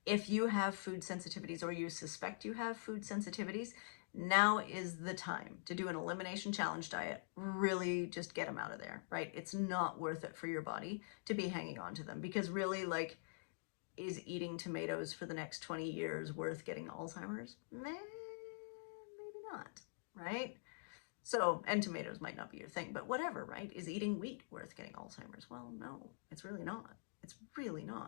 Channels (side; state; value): right; silent; digital silence